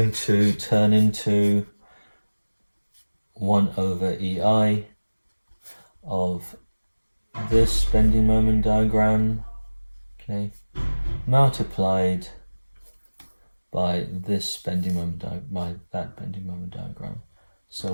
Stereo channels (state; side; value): inverted; both; correlation -1.00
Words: to turn into 1 over EI of this bending moment diagram, okay, multiplied by this bending moment by that bending moment diagram. So